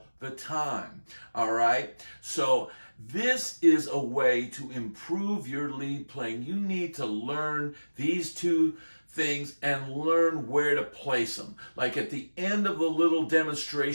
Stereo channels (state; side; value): inverted; both; correlation -1.00